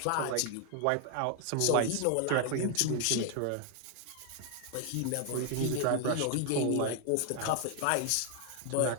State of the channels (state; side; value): different; both; correlation 0.00